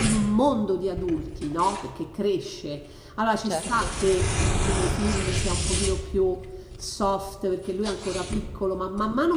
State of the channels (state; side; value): identical; both; correlation 1.00